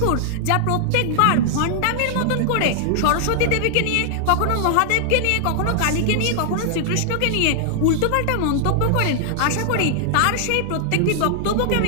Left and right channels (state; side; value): different; both; correlation -0.01